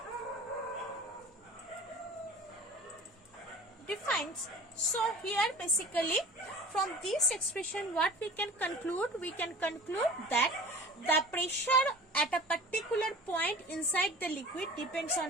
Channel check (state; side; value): normal; both; correlation 0.41